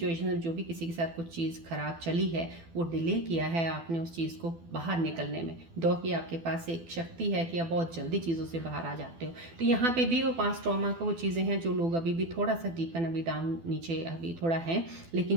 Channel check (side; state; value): left; late; 12 ms